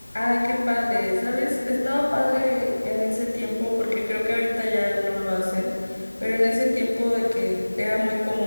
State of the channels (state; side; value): inverted; both; correlation -1.00